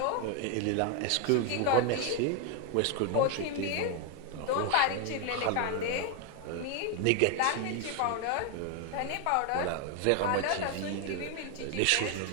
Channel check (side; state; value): both; different; correlation 0.01